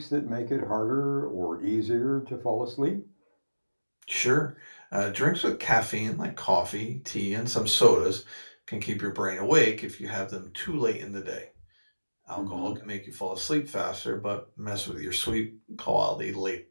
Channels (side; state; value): both; inverted; correlation -1.00